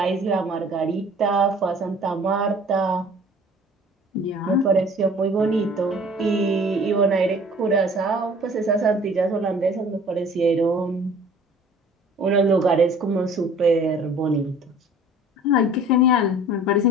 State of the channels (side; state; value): both; normal; correlation 0.49